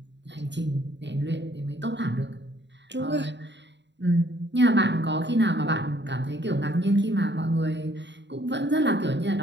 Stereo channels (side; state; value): left; late; 0.52 ms